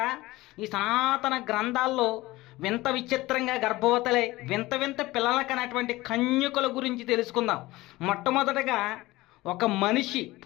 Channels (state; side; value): quieter; right; 19.2 dB